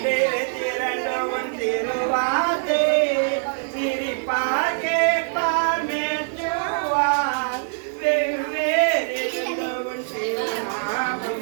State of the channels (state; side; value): silent; left; digital silence